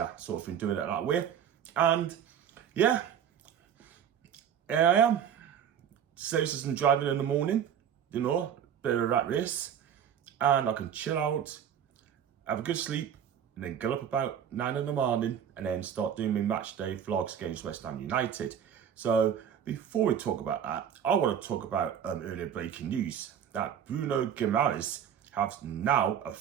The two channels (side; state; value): left; quieter; 8.8 dB